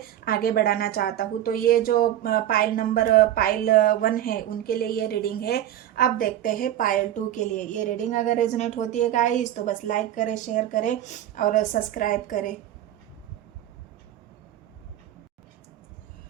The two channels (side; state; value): left; quieter; 12.1 dB